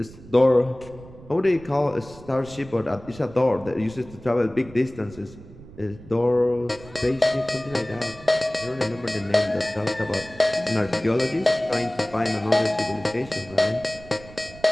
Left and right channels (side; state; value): right; noise; rumble, 19 dB below the sound